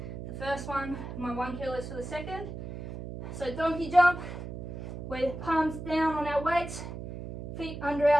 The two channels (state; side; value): noise; right; hum, 8 dB below the sound